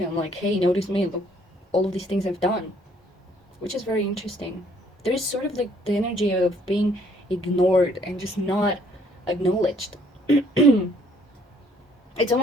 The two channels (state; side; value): normal; both; correlation 0.63